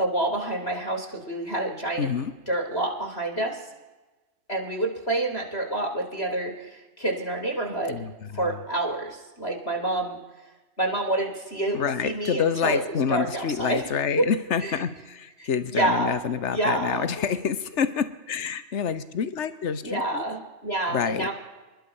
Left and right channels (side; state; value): right; late; 3.3 ms